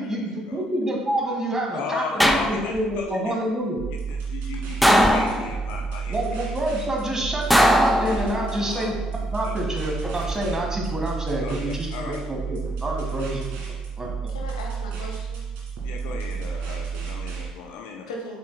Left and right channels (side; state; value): both; normal; correlation 0.76